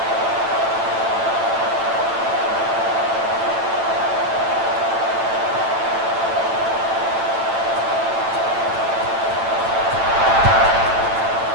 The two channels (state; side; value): late; left; 8.9 ms